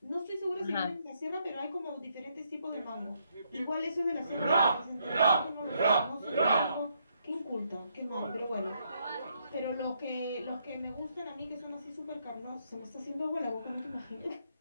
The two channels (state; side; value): inverted; both; correlation -0.74